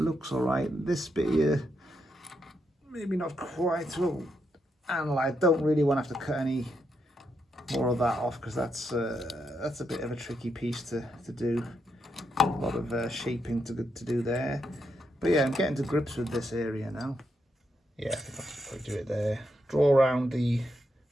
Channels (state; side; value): normal; both; correlation 0.81